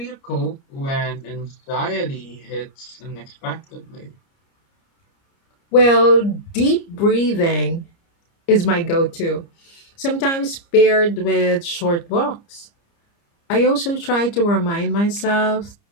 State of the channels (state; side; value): late; right; 30 ms